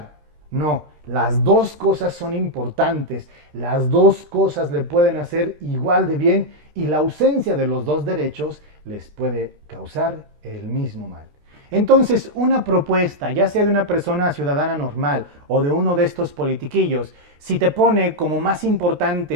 No, las dos cosas son importantes, las dos cosas le pueden hacer igual de bien, y la ausencia de los dos derechos les puede causar el mismo mal. Entonces, una propuesta, ya sea de una persona ciudadana normal o de uno de estos politiquillos, si te pone como más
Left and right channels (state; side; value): late; left; 13 ms